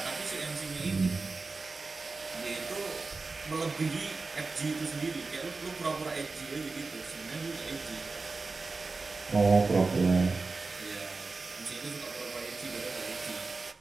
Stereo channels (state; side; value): quieter; left; 3.9 dB